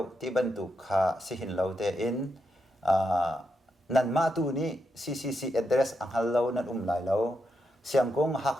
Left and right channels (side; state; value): both; normal; correlation 0.83